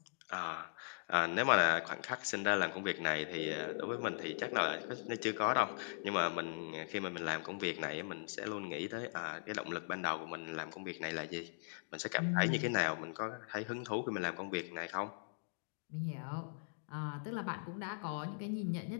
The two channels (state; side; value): silent; right; digital silence